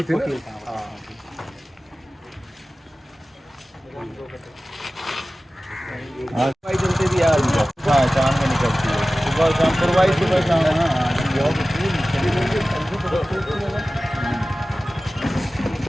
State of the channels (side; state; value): both; normal; correlation 0.96